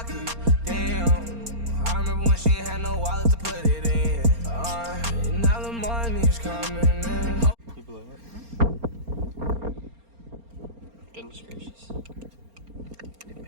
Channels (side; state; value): left; late; 4.3 ms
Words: damn. I remember when she ain't had no wallet to put it in. Now the money's coming in. You blow it. Goodness gracious.